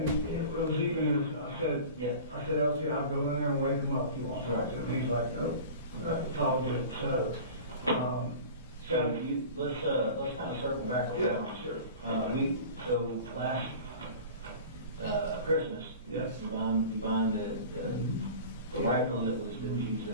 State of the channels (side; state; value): both; inverted; correlation -0.38